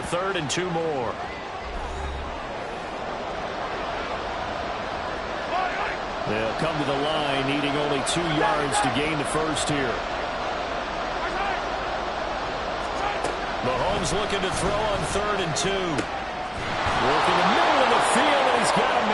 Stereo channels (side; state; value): both; identical; correlation 1.00